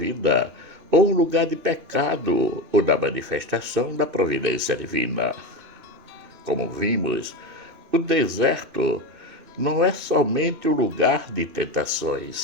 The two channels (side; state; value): left; late; 2.6 ms